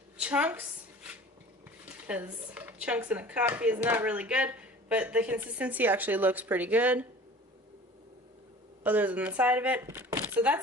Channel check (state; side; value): normal; both; correlation 0.43